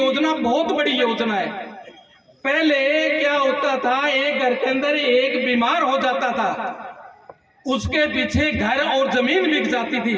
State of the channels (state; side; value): identical; both; correlation 1.00